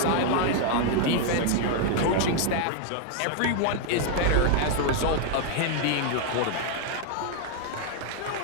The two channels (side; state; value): both; different; correlation 0.00